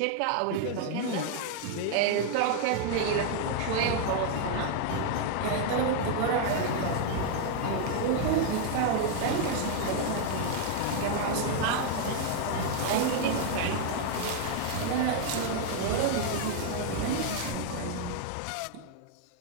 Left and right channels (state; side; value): different; both; correlation 0.00